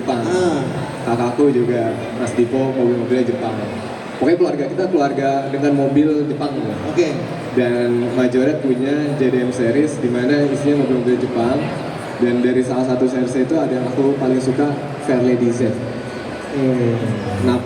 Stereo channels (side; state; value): both; identical; correlation 1.00